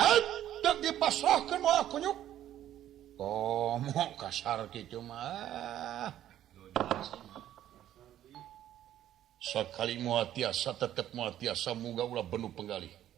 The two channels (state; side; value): quieter; left; 12.0 dB